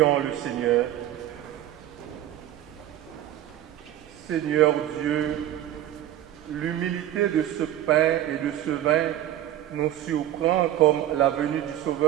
le Seigneur. Seigneur Dieu, l'humilité de ce pain et de ce vin nous surprend comme la venue du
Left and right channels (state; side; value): quieter; left; 12.6 dB